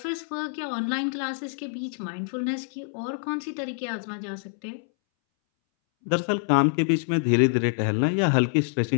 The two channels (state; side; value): silent; right; 61 dB below the other